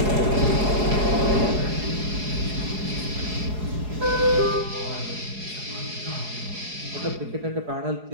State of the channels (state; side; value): late; left; 4.8 ms